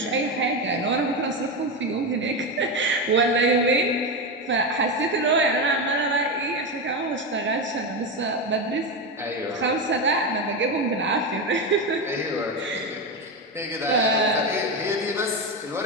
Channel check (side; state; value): both; normal; correlation 0.14